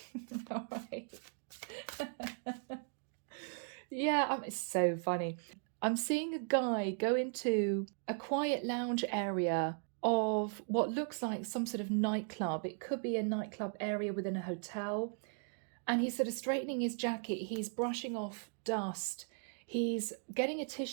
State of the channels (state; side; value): silent; left; 53 dB below the other